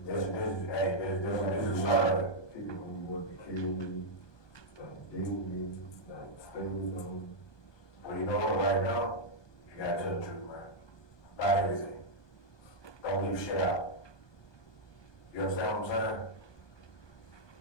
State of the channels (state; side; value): late; right; 1.2 ms